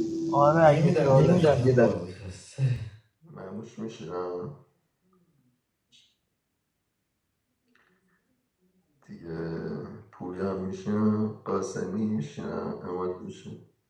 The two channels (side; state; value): both; identical; correlation 1.00